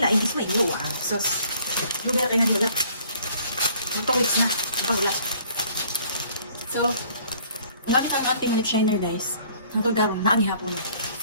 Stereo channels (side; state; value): both; inverted; correlation -0.58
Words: laing isma ilo ah. So, lugar kayo na niulat. Magpawits na, magpawulat. So, ang gamit ang auntie lip shiner guys. Ang tulgarong, naagi hapon.